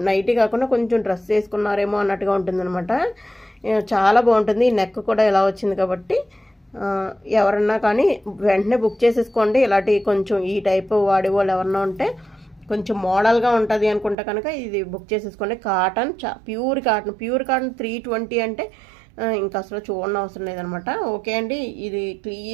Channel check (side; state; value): left; drops out; at 14.2 s